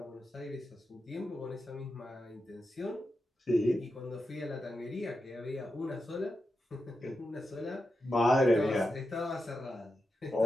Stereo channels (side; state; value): both; normal; correlation 0.89